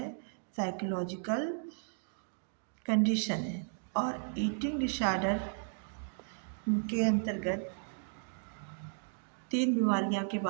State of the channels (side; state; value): left; silent; digital silence